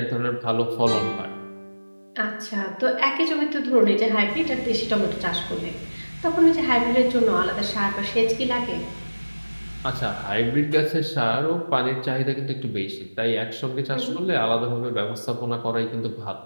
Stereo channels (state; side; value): inverted; both; correlation -1.00